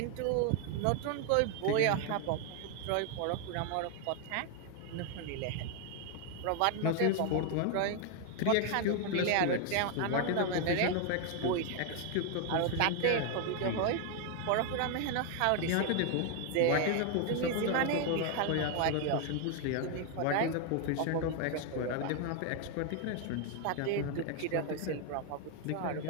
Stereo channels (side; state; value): both; different; correlation 0.00